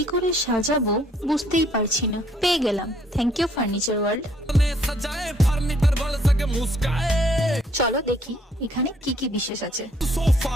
করে সাজাবো বুঝতেই পারছি না, পেয়ে গেলাম থ্যাংক ইউ ফার্নিচার ওয়ার্ল্ড। চলো দেখি এখানে কি কি বিশেষ আছে।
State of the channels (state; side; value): normal; both; correlation 0.65